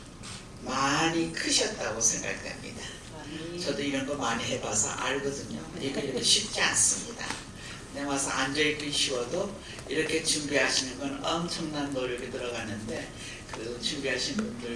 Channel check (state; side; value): identical; both; correlation 1.00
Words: 많이 크셨다고 생각됩니다. 저도 이런 거 많이 해봐서 알거든요. 이게 쉽지 않습니다. 내 와서 앉아있기 쉬워도 이렇게 준비하시는 건 엄청난 노력이 들어가는데 그 준비하신